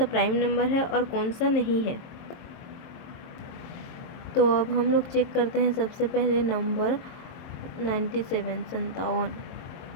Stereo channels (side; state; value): right; late; 22 ms